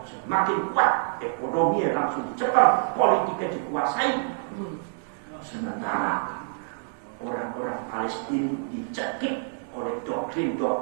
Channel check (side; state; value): left; silent; digital silence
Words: semakin kuat, ekonominya langsung dicekal, politiknya dikuasai. Sementara orang-orang Palestina dicekik oleh